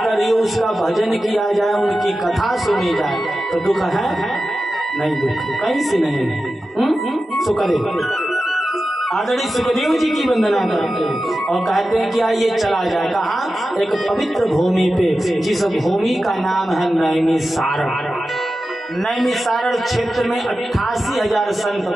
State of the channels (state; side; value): normal; both; correlation 0.93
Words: उसका भजन किया जाए, उनकी कथा सुनी जाए, तो दुख है नहीं? दुख कहीं से नहीं है। सुखदेव आदरणीय सुखदेव जी की वंदना करते हैं और कहते हैं कि आइए चला जाए। कहाँ? एक पवित्र भूमि पे, जिस भूमि का नाम है नैमिषारण्य। नैमिषारण्य क्षेत्र में 88,000 संत